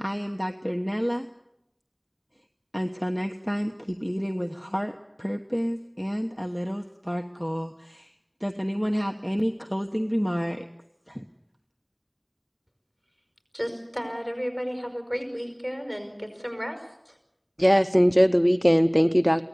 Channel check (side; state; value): both; identical; correlation 1.00